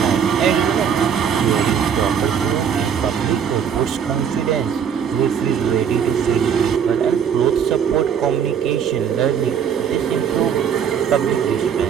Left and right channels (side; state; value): left; quieter; 7.7 dB